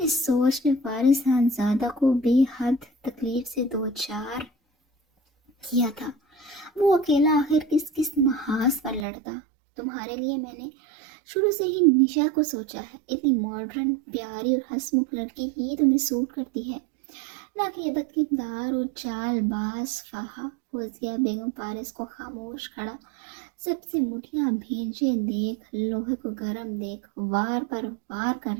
سوچ نے فارس صاحبزادہ کو بے حد تکلیف سے دوچار کیا تھا۔ وہ اکیلا آخر کس محاذ پر لڑتا؟ تمہارے لیے میں نے شروع سے ہی نشا کو سوچا ہے، اتنی ماڈرن، پیاری اور ہنسمکھ لڑکی ہی تمہیں سوٹ کرتی ہے، نہ کہ یہ بدکردار اور چال باز فہا۔ فوزیہ بیگم فارس کو خاموش کھڑا سب سے مٹھیاں بھیجے دیکھ، لوہے کو گرم دیکھ وار پر وار کر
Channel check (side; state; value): left; drops out; at 9.1 s